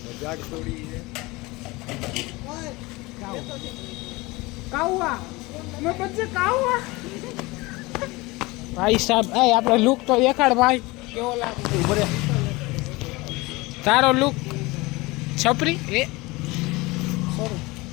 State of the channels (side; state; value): right; quieter; 22.8 dB